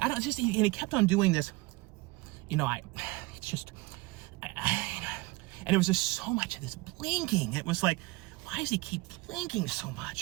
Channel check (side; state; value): left; quieter; 22.1 dB